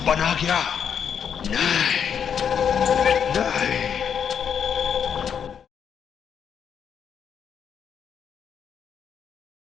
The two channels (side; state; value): right; quieter; 7.7 dB